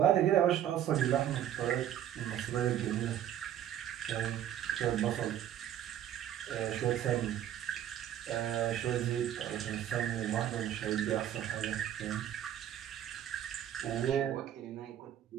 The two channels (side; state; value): left; quieter; 10.9 dB